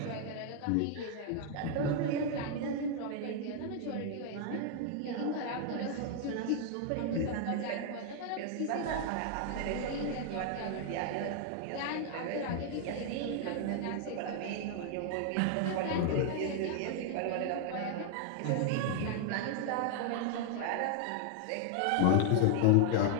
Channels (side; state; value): both; different; correlation 0.00